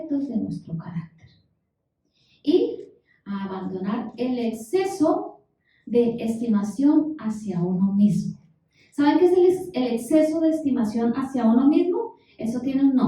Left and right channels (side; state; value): both; identical; correlation 1.00